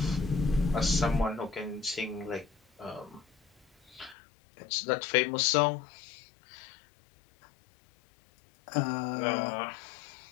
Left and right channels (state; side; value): drops out; right; at 4.2 s